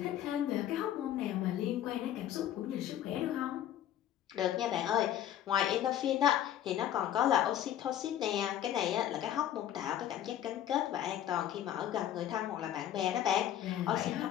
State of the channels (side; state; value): right; quieter; 11.3 dB